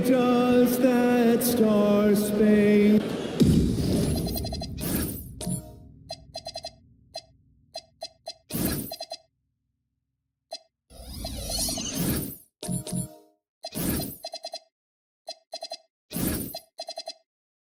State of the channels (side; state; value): both; identical; correlation 1.00